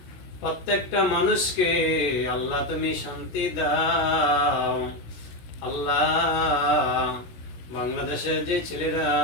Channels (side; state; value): right; late; 16 ms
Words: প্রত্যেকটা মানুষকে আল্লাহ তুমি শান্তি দাও। আল্লাহ বাংলাদেশের যে ছেলেরা